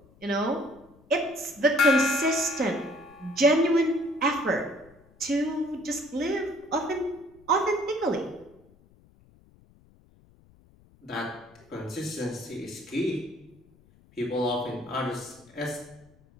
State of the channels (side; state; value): left; noise; rumble, 28 dB below the sound